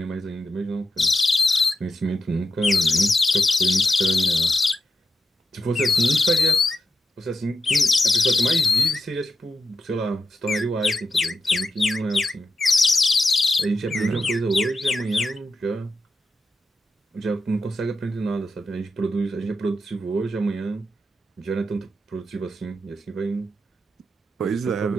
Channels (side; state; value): both; normal; correlation 0.87